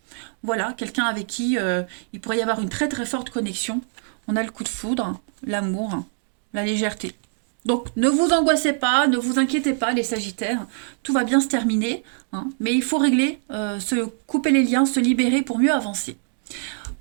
Voilà, quelqu'un avec qui il pourrait y avoir une très très forte connexion. On a le coup de foudre, l'amour, la légèreté. Donc ne vous angoissez pas, ne vous inquiétez pas les Sagittaires, tout va bien se terminer, hein, mais il faut régler, se couper les liens, se libérer pour mieux avancer.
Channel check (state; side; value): silent; left; 56 dB below the other